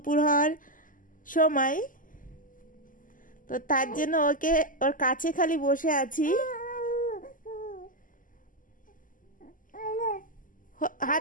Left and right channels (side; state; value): right; late; 0.39 ms